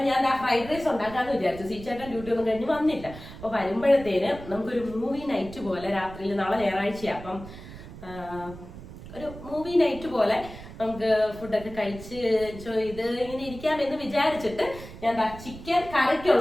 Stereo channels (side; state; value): right; noise; rumble, 14 dB below the sound